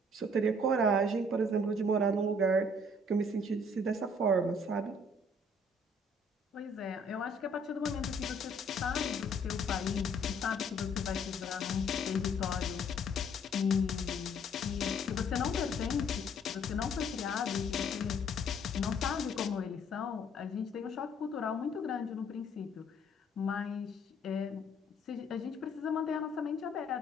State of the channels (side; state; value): both; normal; correlation 0.61